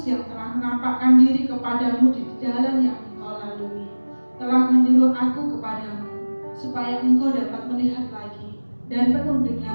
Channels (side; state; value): both; inverted; correlation -1.00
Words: yang telah menampakkan diri kepadamu di jalan yang engkau lalui, telah menyuruh aku kepadamu, supaya engkau dapat melihat lagi dan penuh